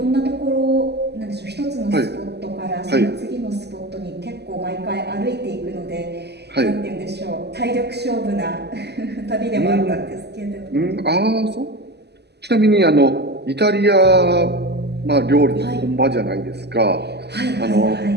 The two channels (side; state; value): left; late; 0.49 ms